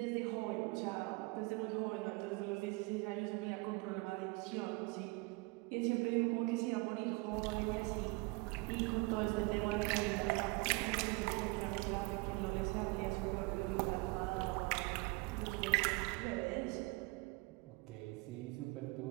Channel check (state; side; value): quieter; left; 25.9 dB